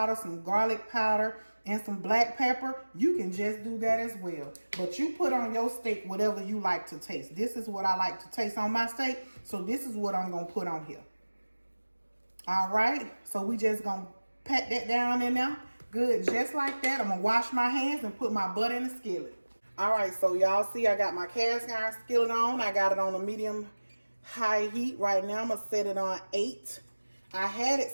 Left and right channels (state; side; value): inverted; both; correlation -1.00